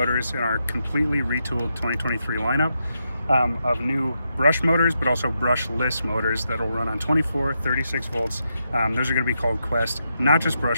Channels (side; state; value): both; inverted; correlation -0.83